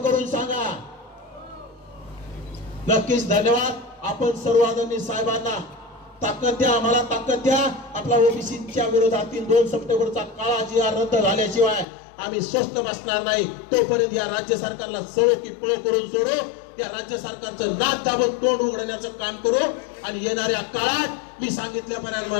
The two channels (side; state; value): right; drops out; at 11.9 s